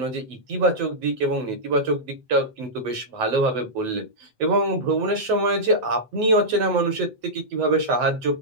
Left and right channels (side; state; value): left; late; 7.9 ms